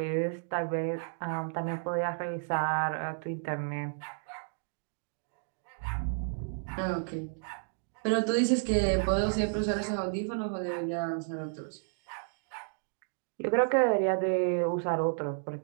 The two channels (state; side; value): silent; left; digital silence